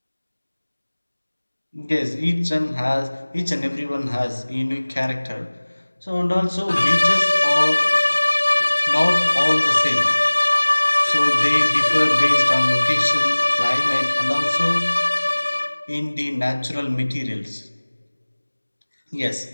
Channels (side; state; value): both; inverted; correlation -1.00